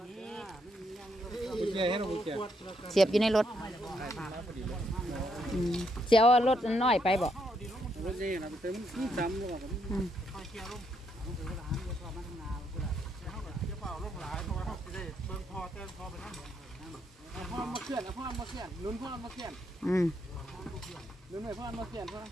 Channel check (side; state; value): both; normal; correlation 0.76